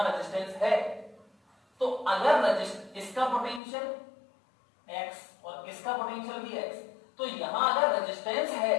रेजिस्टेंस है। तो अगर इसका पोटेंशियल x और इसका पोटेंशियल भी x, तो यहां अगर रेजिस्टेंस है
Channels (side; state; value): right; drops out; at 3.6 s